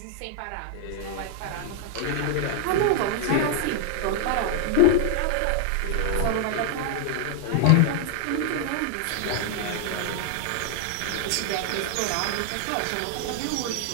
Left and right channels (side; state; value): both; different; correlation 0.00